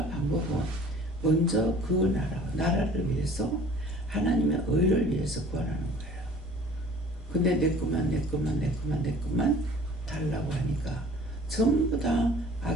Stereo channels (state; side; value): normal; both; correlation 0.49